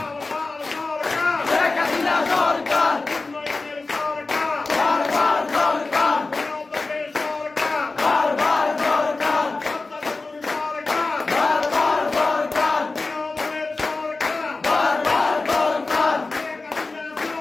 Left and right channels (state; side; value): quieter; right; 3.6 dB